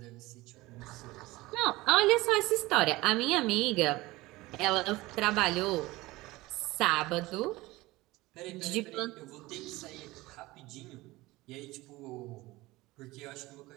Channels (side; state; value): left; quieter; 19.9 dB